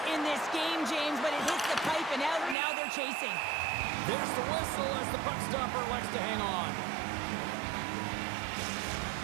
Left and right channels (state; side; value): drops out; left; at 2.6 s